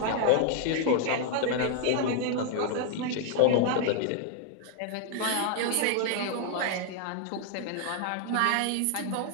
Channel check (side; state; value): both; different; correlation 0.00